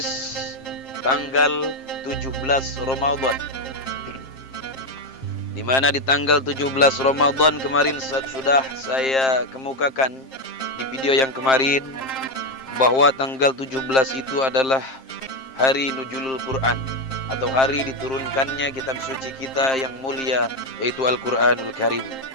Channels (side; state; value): right; late; 7.6 ms